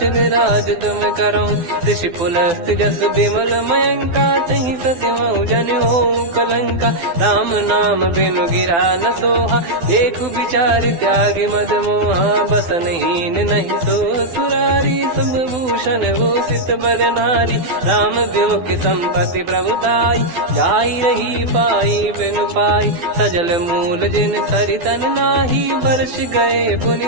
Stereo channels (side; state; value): left; late; 12 ms